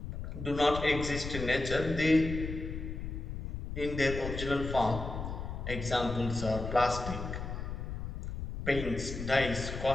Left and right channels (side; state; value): left; noise; rumble, 6 dB below the sound